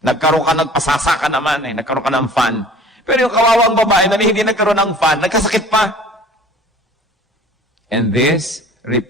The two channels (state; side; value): normal; both; correlation 0.47